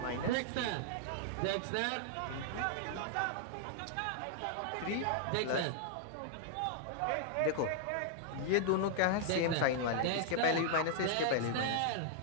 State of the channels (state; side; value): different; both; correlation -0.01